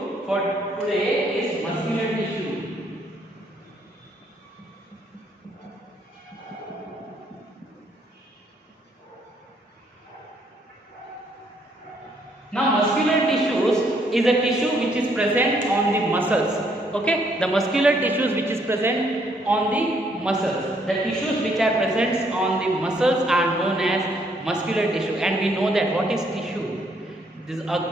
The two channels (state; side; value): normal; both; correlation 0.69